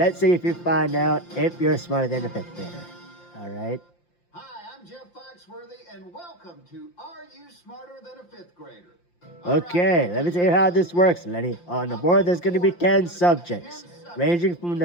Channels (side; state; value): right; late; 5.8 ms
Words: see if you find out if you're smarter than a fifth grader. All right. Hi, I'm Jeff Foxworthy, and welcome to Are You Smarter Than a Fifth Grader? Okay, let me tell you how this works, Lenny. On the board, there's going to be 10 subjects, ranging from